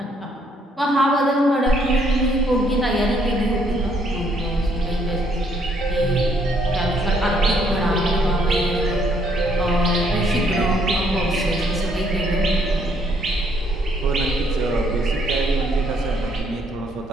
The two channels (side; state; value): both; normal; correlation 0.69